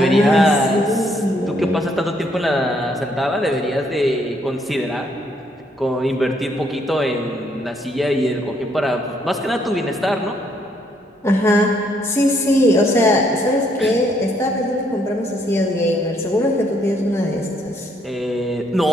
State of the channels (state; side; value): normal; both; correlation 0.70